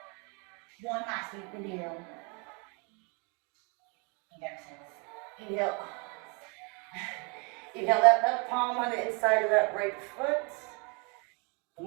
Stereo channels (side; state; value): left; quieter; 32.2 dB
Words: One last deep inhale. And exhale. Inhale. Inhale that left palm on the inside of that right foot. And